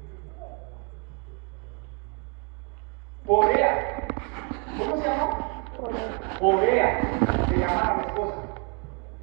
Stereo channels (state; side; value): quieter; left; 31.8 dB